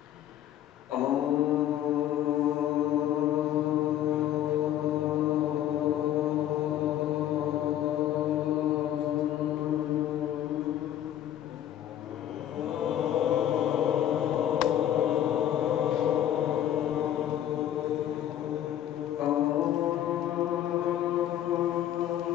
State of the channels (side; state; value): right; quieter; 11.5 dB